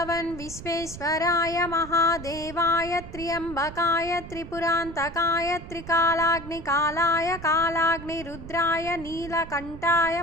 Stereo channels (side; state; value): right; noise; rumble, 13 dB below the sound